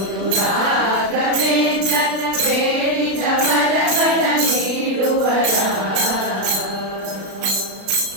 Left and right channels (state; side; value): late; left; 36 ms